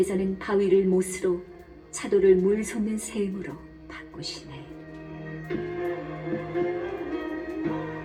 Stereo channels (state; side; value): identical; both; correlation 1.00